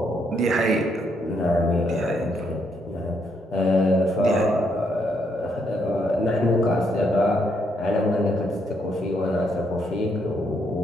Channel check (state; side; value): normal; both; correlation 0.75